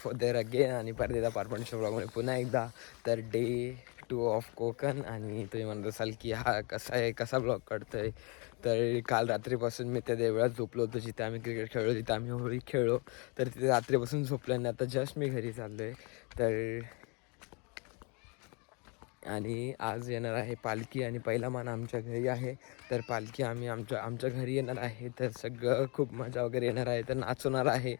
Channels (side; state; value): right; quieter; 31.7 dB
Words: there again आणि परदेदा पार्टनरशिप ब्लॉगमध्ये पुन्हा एकदा. तर डे 2 ऑफ कोकण. आणि तुम्ही म्हणत असाल की हा कसा आहे, कसा ब्लॉग काढतोय. तर काल रात्रीपासून मी त्या देवळात झोपलो होतो जिथे आम्ही क्रिकेट खेळलो, जिथे आम्ही होळी खेळलो. तर तिथे रात्रीपासून झोपलो आणि आता जस्ट मी घरी चाललो आहे. तर आणि आज येणार आहे पालखी आणि पहिला मान आमच्या घरी आहे. तर पालखी आम्ही आमच्या घरी येणार आहे. तर सगळं खूप मजा वगैरे येणार आहे. तर नाचवणार आहे.